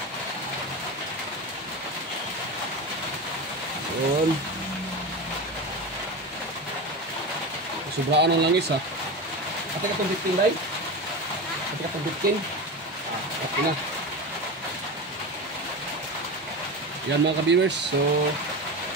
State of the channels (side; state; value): both; normal; correlation 0.23